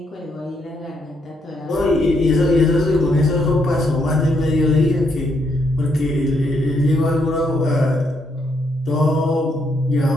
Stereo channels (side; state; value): both; normal; correlation 0.75